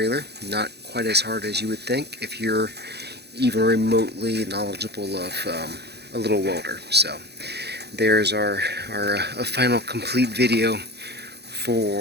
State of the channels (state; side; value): late; left; 0.48 ms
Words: Not quite as hard as you would think if you're even remotely knowledgeable of a little welder. So there's our final complete video